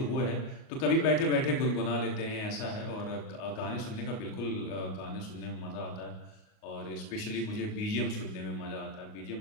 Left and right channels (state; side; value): late; right; 38 ms